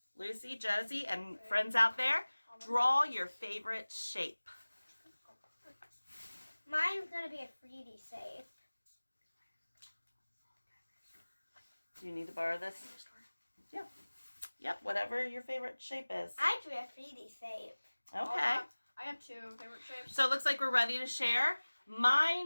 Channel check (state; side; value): inverted; both; correlation -1.00